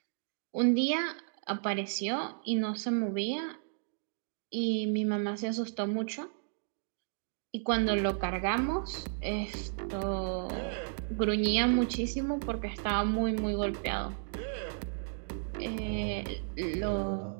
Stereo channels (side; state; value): left; silent; digital silence